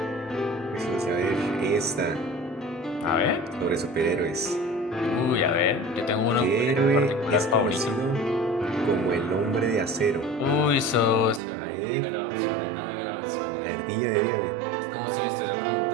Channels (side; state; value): left; drops out; at 11.4 s